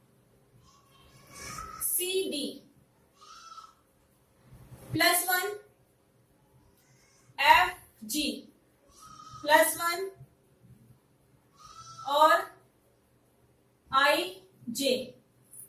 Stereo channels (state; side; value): identical; both; correlation 1.00